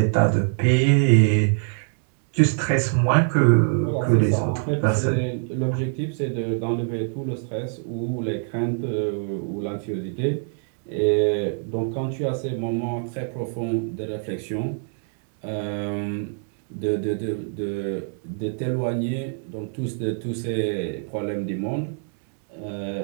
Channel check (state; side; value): silent; left; 56 dB below the other